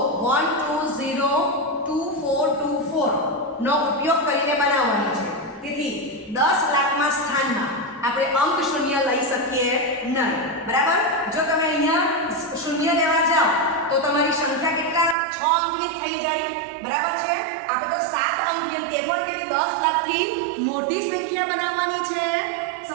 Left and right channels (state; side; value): drops out; left; at 15.2 s